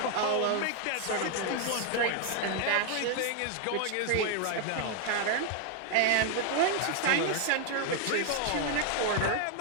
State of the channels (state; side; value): different; both; correlation 0.00